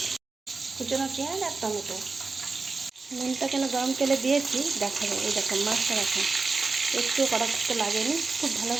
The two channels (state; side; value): quieter; left; 4.1 dB